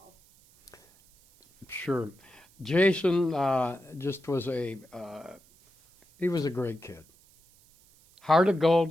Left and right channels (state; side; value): noise; right; hiss, 29 dB below the sound